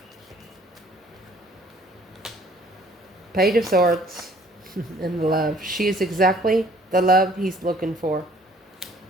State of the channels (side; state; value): both; normal; correlation 0.57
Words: Page of Swords and love. She is exactly the love he's looking for.